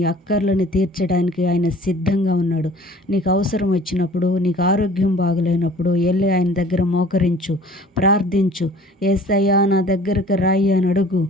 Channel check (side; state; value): both; normal; correlation 0.49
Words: అక్కర్లను తీర్చడానికి ఆయన సిద్ధంగా ఉన్నాడు. నీకు అవసరం వచ్చినప్పుడు, నీకు ఆరోగ్యం బాగలేనప్పుడు వెళ్ళి ఆయన దగ్గర మోకరించు, ప్రార్థించు. యేసయ్య నా దగ్గరకు రాయి అని అడుగు,